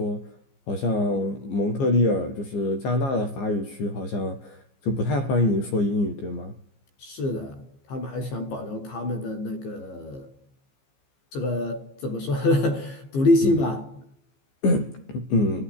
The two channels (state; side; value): late; right; 15 ms